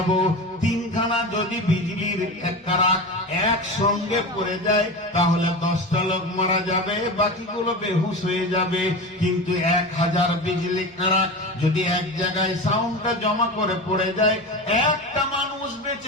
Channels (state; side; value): normal; both; correlation 0.27